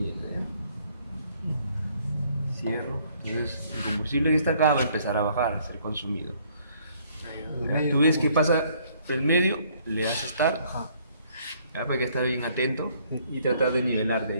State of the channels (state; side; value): inverted; both; correlation -0.64